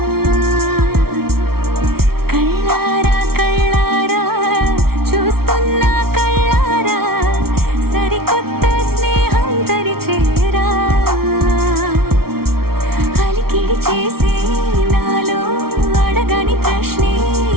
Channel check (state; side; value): late; left; 0.94 ms